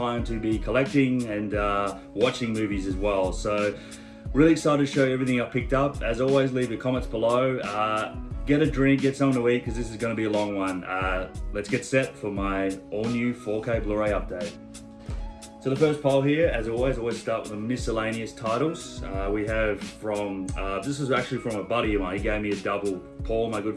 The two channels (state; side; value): identical; both; correlation 1.00